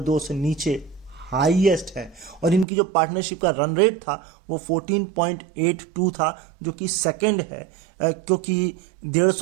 2 से नीचे हाईएस्ट है। और इनकी जो पार्टनरशिप का रन रेट था वो 14.82 था, जो कि सेकंड है, क्योंकि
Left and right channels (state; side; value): drops out; left; at 2.7 s